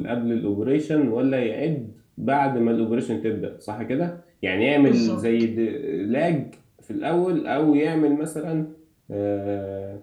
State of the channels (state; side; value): identical; both; correlation 1.00